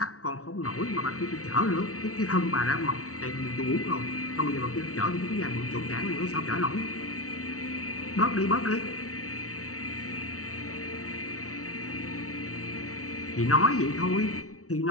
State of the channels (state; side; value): late; right; 0.65 ms